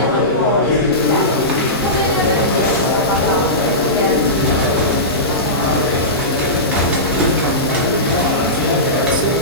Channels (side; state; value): both; normal; correlation -0.18